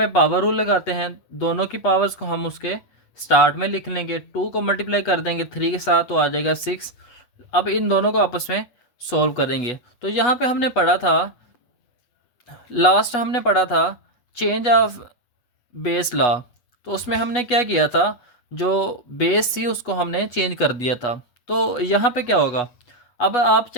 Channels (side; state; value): right; late; 8.2 ms